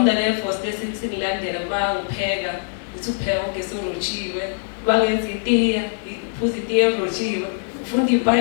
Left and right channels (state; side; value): silent; right; digital silence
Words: force singilandela bangipheka ukuthi upheka ugesi orojiwe, bangenza itiya, uphuza itiya erojiwe, ufunda